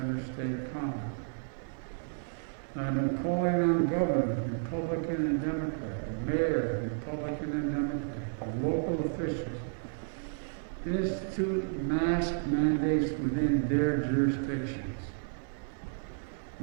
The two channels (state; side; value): silent; left; digital silence